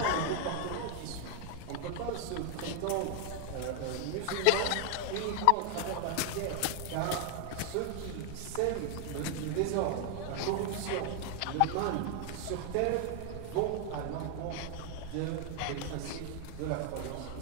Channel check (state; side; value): different; both; correlation 0.00